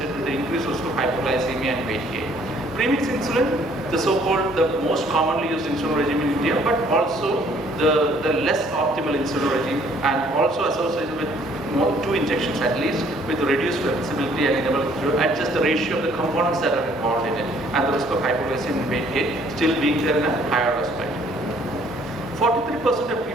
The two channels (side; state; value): both; normal; correlation 0.61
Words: with the increased risk of hypoglycemia and weight gain. Premix insulin, the most commonly used insulin regime in India, but also the less optimal insulin regime, and also associated with 2 injections at least, with reduced flexibility and enable to adjust the ratio of the components that are involved in it, and the risk of hypoglycemia and weight gain still being there in a higher aspect. 43% of